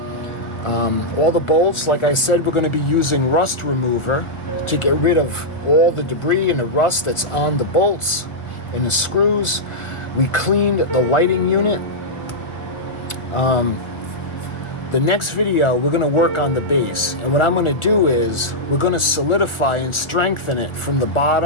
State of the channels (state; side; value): late; right; 1.4 ms